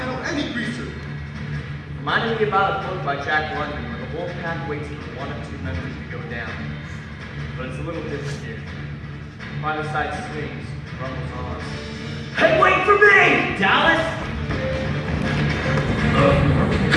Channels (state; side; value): identical; both; correlation 1.00